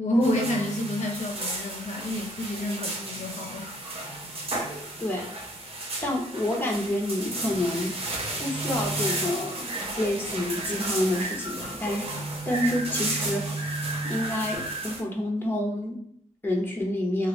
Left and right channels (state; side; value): normal; both; correlation 0.63